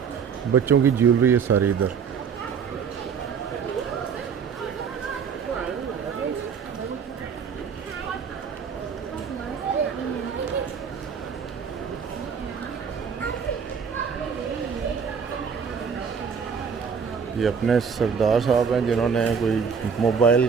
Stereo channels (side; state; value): left; quieter; 6.4 dB